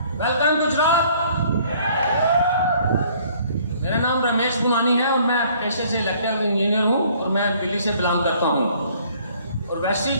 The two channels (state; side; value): inverted; both; correlation -0.59